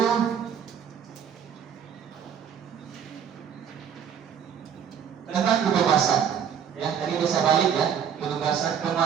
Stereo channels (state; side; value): quieter; left; 8.1 dB